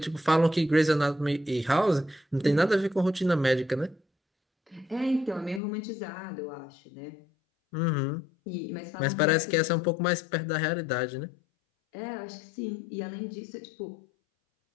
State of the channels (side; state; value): right; drops out; at 5.6 s